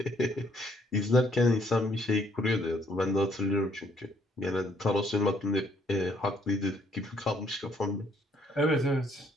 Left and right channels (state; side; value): normal; both; correlation 0.67